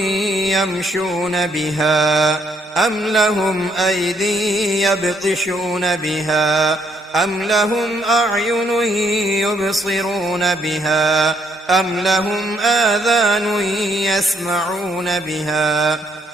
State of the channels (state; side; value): normal; both; correlation 0.70